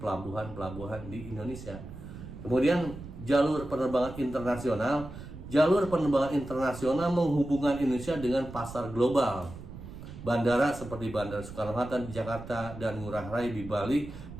pelabuhan-pelabuhan di Indonesia. Kemudian jalur penerbangan internasional. Jalur penerbangan internasional menghubungkan Indonesia dengan pasar global. Bandara seperti Bandara Soekarno-Hatta di Jakarta dan Ngurah Rai di Bali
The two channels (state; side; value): noise; right; rumble, 13 dB below the sound